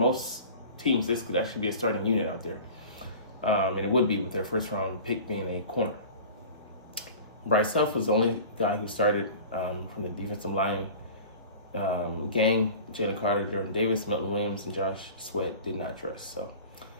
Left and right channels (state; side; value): inverted; both; correlation -0.39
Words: teams, this could actually be a starting unit out there, and it would be with their first round pick being a corner. Bryce Huff was the only guy who started from the defensive line gang. Jalen Carter, Jordan Davis, Milton Williams, and Josh Sweat did not dress. So